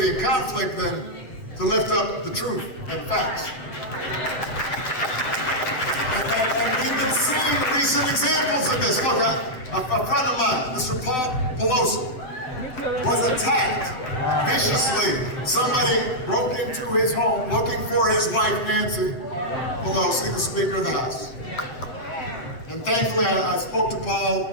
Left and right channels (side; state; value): right; late; 7.9 ms